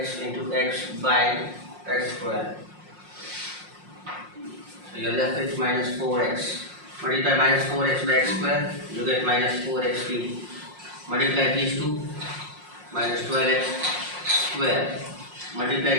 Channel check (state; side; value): late; left; 5.6 ms